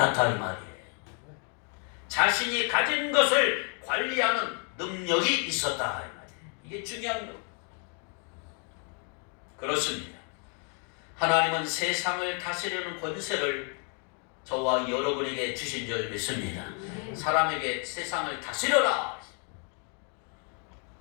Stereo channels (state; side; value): quieter; right; 39.9 dB